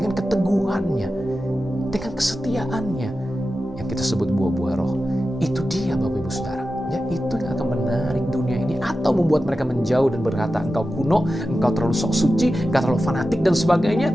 keteguhannya, dengan kesetiaannya, yang kita sebut buah-buah roh. Itu dia Bapak Ibu Saudara. Ya, itu yang akan menarik dunia ini atau membuat mereka menjauh dan berkata, engkau kuno, engkau terlalu sok suci, engkau terlalu fanatik dan sebagainya.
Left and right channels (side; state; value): both; normal; correlation 0.92